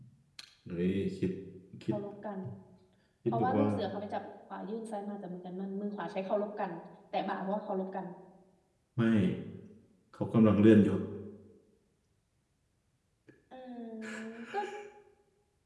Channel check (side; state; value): both; identical; correlation 1.00